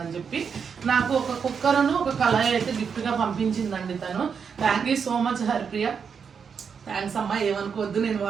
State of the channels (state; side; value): quieter; left; 6.5 dB